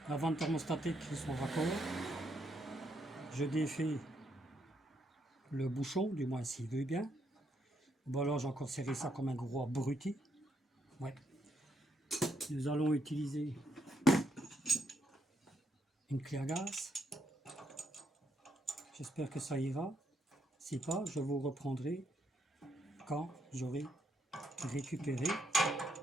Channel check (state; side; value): normal; both; correlation 0.76